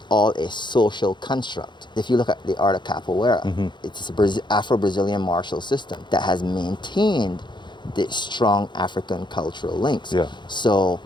all a social construct. If you look at the art of capoeira, it's a Afro-Brazilian martial system that has maintained the strong African cultural links. Yeah. So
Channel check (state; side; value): late; right; 0.22 ms